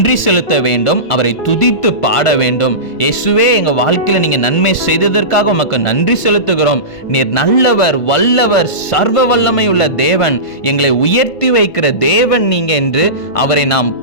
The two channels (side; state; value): right; late; 1.5 ms